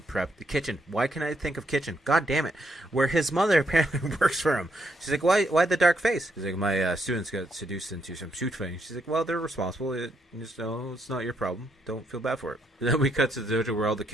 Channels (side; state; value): both; normal; correlation 0.76